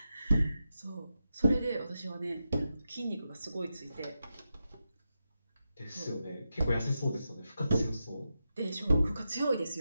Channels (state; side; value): inverted; both; correlation -0.89